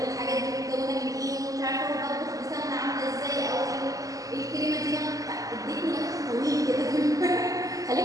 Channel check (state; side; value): late; left; 0.17 ms